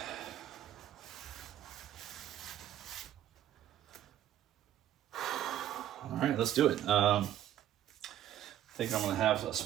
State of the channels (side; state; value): left; quieter; 11.7 dB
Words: All right, let's do it. I think I'm gonna have a